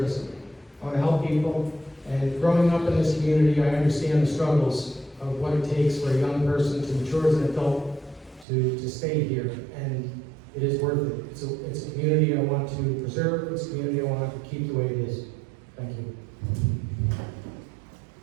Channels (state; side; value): drops out; left; at 8.5 s